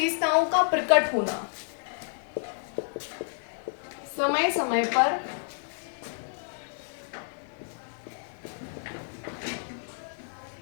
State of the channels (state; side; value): silent; right; digital silence